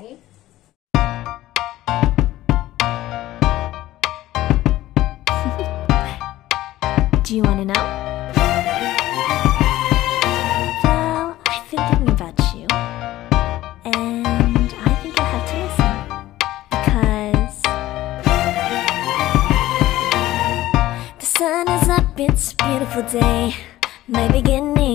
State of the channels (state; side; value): quieter; right; 15.6 dB